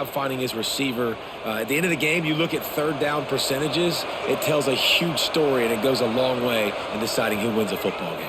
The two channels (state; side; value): identical; both; correlation 1.00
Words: finding his receiver. At the end of the game, you look at 3rd down percentages. It tells a huge story, and it goes a long way in deciding who wins a football